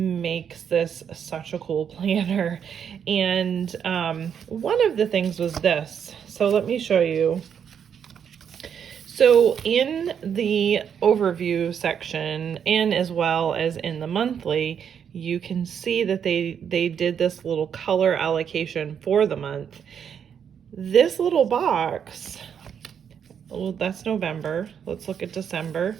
this such a cool planner. And one of the things was this. So let me show you. So in the overview section, and as well as in the monthly, you can see that they did this little color allocation for the month. This little box, well, that's November. Let's look at December.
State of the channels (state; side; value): quieter; left; 7.9 dB